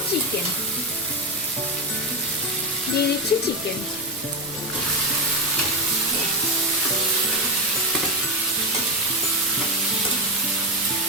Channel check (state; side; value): normal; both; correlation 0.11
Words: চিকেন। দিয়ে দিচ্ছি চিকেন।